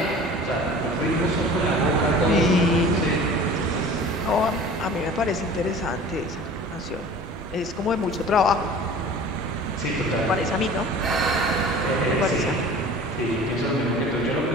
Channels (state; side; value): normal; both; correlation 0.42